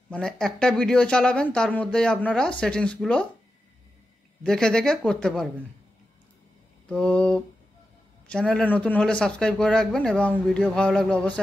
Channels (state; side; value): normal; both; correlation 0.90